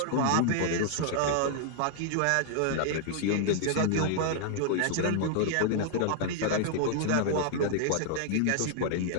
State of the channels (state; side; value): different; both; correlation 0.00